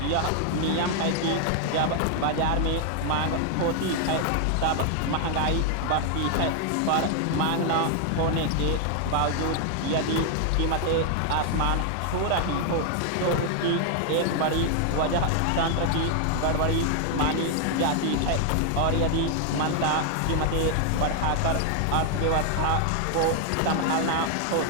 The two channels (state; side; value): different; both; correlation 0.00